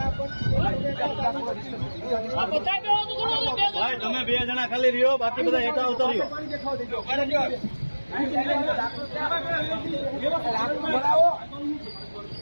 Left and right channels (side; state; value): both; inverted; correlation -1.00